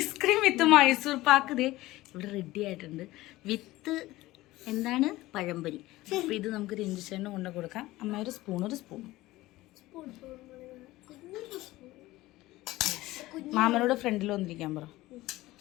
with Mysore pak ദേ ഇവിടെ റെഡി ആയിട്ടുണ്ട്. വിത്ത് എന്താണ് പഴംപൊരി. അപ്പം ഇത് നമുക്ക് രഞ്ജിച്ചേട്ടന് കൊണ്ട് കൊടുക്കാം. അമ്മ ഒരു സ്പൂൺ മാമനോട് ഫ്രണ്ടിൽ വന്നിരിക്കാൻ പറ.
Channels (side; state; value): right; quieter; 17.9 dB